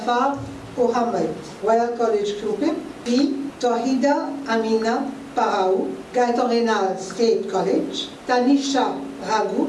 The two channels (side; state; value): both; identical; correlation 1.00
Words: Mohammed, Royal College Kupim. Puis Tawhida Amina Paraou, Gaitan Renal State College. Tanisha Raghu,